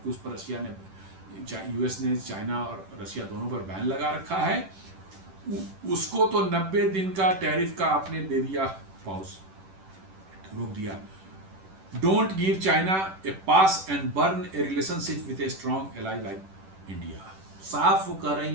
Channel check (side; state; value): left; late; 10 ms